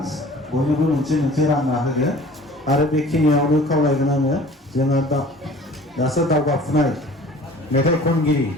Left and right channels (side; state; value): both; normal; correlation 0.47